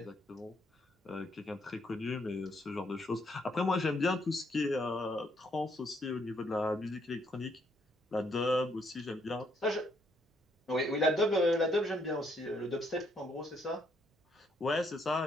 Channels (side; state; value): both; normal; correlation 0.72